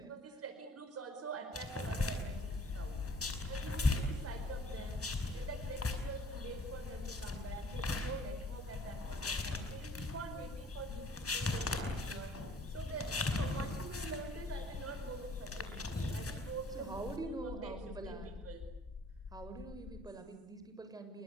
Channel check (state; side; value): normal; both; correlation 0.55